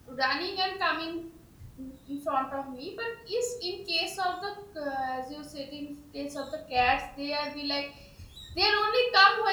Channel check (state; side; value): identical; both; correlation 1.00